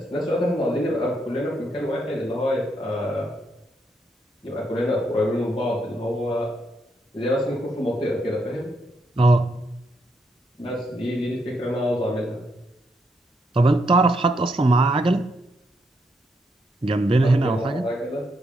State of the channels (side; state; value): both; normal; correlation 0.78